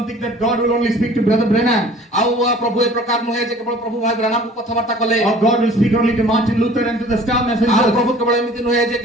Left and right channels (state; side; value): normal; both; correlation 0.49